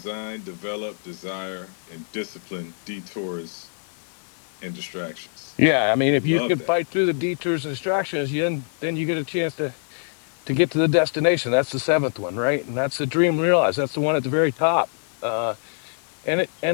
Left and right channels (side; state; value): right; silent; 61 dB below the other